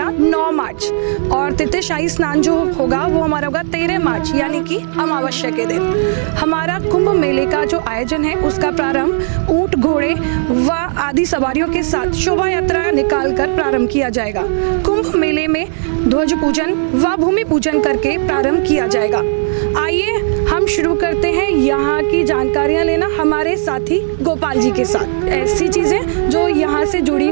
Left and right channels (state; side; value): silent; left; digital silence